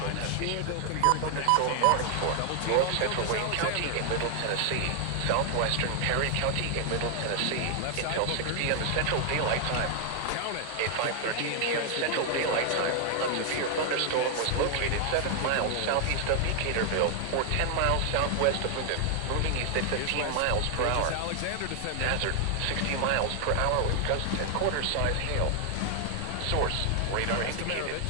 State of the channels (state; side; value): different; both; correlation 0.00